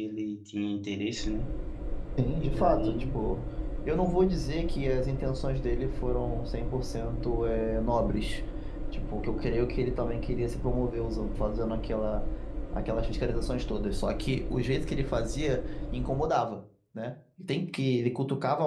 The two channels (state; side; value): identical; both; correlation 1.00